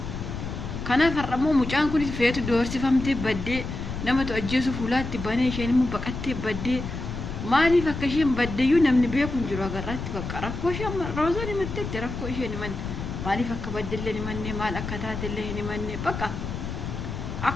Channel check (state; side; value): noise; left; rumble, 6 dB below the sound